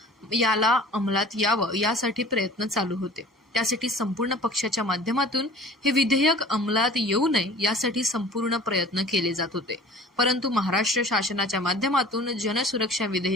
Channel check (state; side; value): normal; both; correlation 0.45